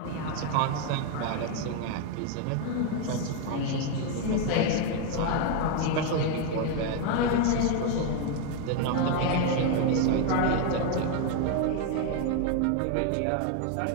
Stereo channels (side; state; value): both; different; correlation 0.01